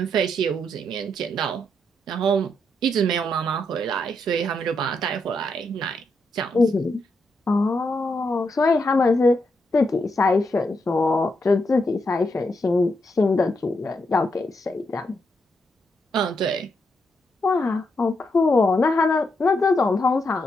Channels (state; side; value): normal; both; correlation 0.81